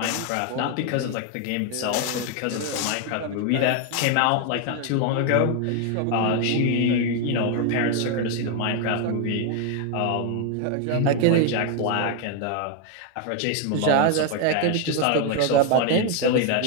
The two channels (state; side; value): different; both; correlation 0.01